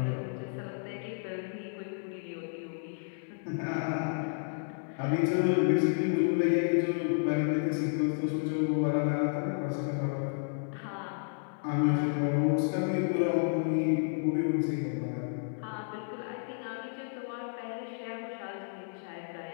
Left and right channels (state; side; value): silent; right; digital silence